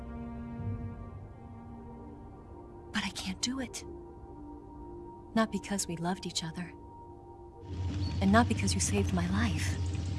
But I can't do it. Not because we loved each other. And not because you saved my life.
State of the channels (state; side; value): identical; both; correlation 1.00